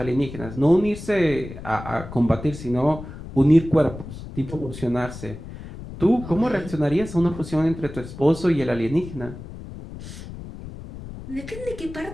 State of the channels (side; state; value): left; noise; rumble, 12 dB below the sound